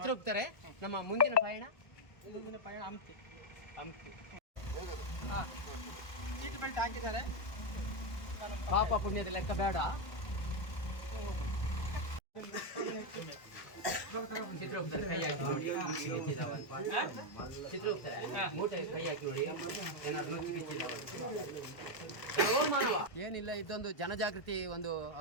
ನಮ್ಮ ಮುಂದಿನ ಪಯಣ ಹಂಪಿ. ಹಂಪಿ. ಸೀಟ್ ಬೆಲ್ಟ್ ಹಾಕಿದ್ದಾರೆ. ಪಾಪ ಪುಣ್ಯದ ಲೆಕ್ಕ ಬೇಡ. ಚಿತ್ರಗುಪ್ತರೆ ಕೈ ಹಾಕಿ ನೋಡಿ, ಚಿತ್ರಗುಪ್ತರೆ ಮೂಟೆ ಕೈ ಹಾಕಿ ನೋಡಿ, ಏನಾದ್ರು ನುಚ್ಚು ಬಿಚ್ಚಿದಾವ. ಏನಿಲ್ಲ, ಇದೊಂದು ಜನಜಾಗೃತಿ, ಒಂದು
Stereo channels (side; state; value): right; late; 1.3 ms